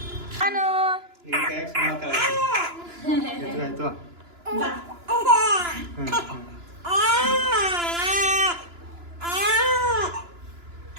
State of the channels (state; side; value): late; left; 2.9 ms